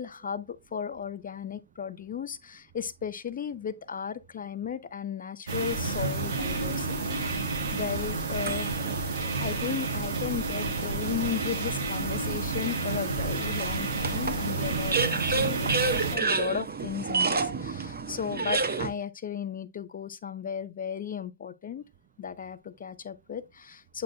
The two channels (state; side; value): inverted; both; correlation -0.38